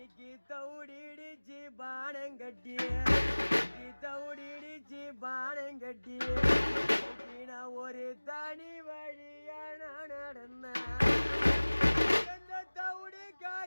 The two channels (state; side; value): inverted; both; correlation -1.00